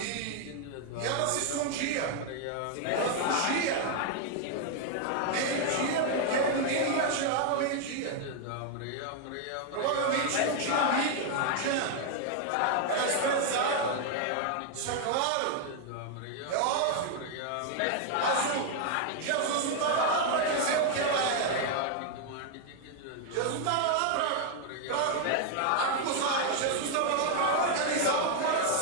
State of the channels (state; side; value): different; both; correlation 0.00